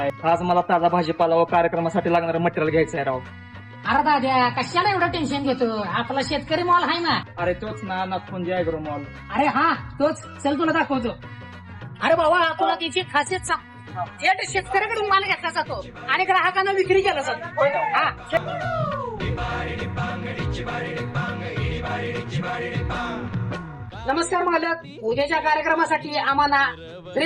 आज मला ताजा भाजीपाला व कार्यक्रमासाठी लागणारं मटेरियल घ्यायचं आहे राव. अरे दाद्या कशाला एवढं टेन्शन घेतो, आपला शेतकरी मॉल आहे ना. अरे तोच ना, नागपुंजी ऍग्रो मॉल. अरे हा तोच, चल तुला दाखवतो. अरे बाबा तुला त्याची खासियत सांग, थेट शेतकऱ्याकडून माल घेतला जातो आणि ग्राहकांना विक्री केला जातो. हा नमस्कार मालक, उद्याच्या कार्यक्रमासाठी आम्हाला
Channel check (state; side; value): identical; both; correlation 1.00